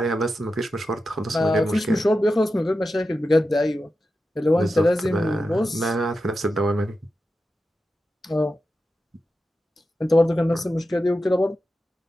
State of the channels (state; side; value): normal; both; correlation 0.91